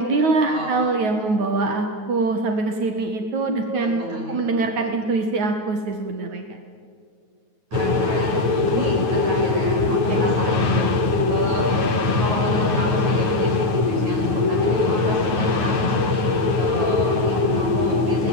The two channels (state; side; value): late; left; 9.3 ms